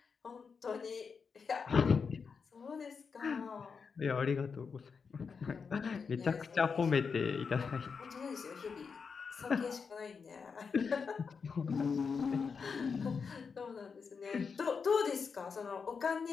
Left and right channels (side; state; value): right; quieter; 5.6 dB